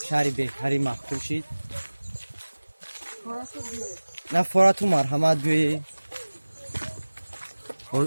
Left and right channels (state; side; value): inverted; both; correlation -1.00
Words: شهری بهتری محبوب شید نه فراتو مرحمت بیایی